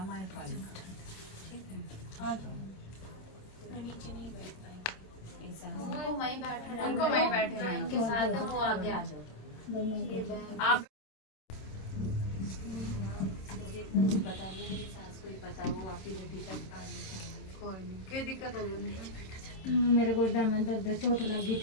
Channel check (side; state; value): right; late; 26 ms